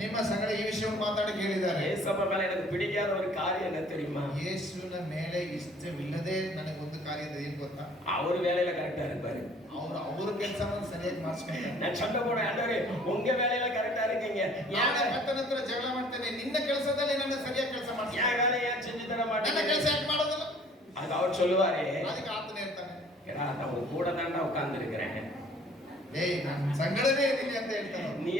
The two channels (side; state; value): both; normal; correlation 0.55